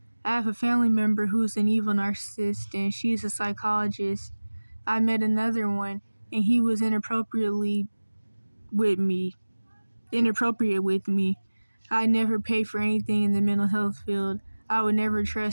I have a family member who's an evil narcissist, and she's a psychologist. I met another one, and he was inappropriate with me. I never pay for anything in the mental health field. I would never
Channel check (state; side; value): inverted; both; correlation -1.00